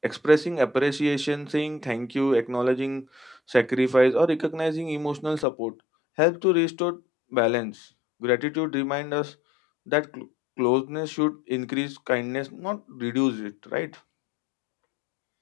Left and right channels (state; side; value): drops out; right; at 5.5 s